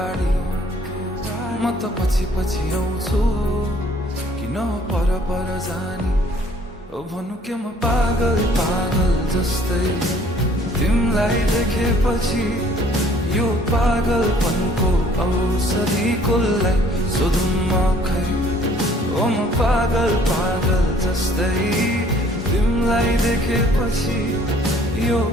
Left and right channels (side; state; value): both; normal; correlation 0.58